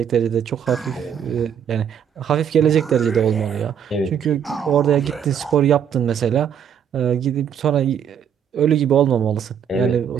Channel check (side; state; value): left; quieter; 8.3 dB